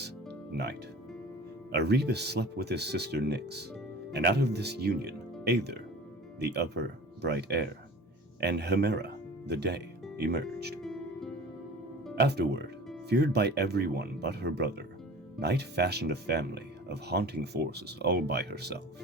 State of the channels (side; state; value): both; normal; correlation 0.41